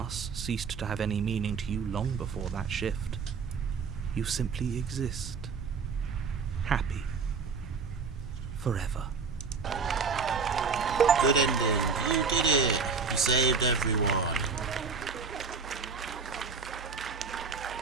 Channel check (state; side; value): quieter; left; 5.2 dB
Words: ceased to have any meaning to you long before that shift, you simply exist. Happy. Forever. Good ending. You did it. You saved everyone.